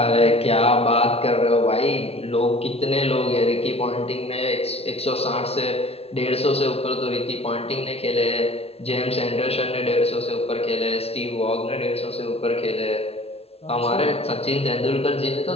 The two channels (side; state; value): right; late; 0.29 ms